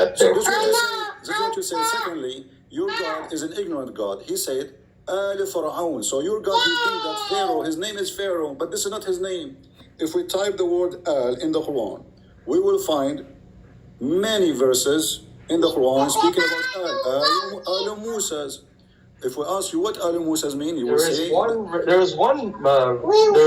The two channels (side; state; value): both; identical; correlation 1.00